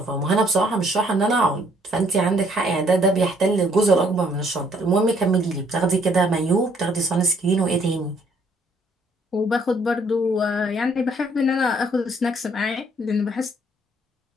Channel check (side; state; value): both; normal; correlation 0.65